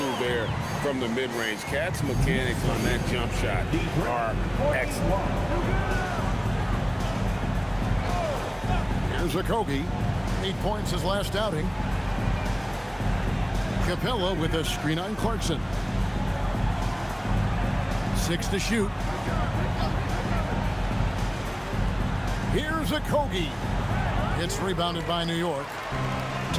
there from the mid-range. Cat's mechanics on that jump shot are excellent. Here's Okogie. 8 points his last outing. Capella with a screen on Clarkson. 6 to shoot. Here's Okogie. It's rebounded by New York.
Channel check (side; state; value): both; identical; correlation 1.00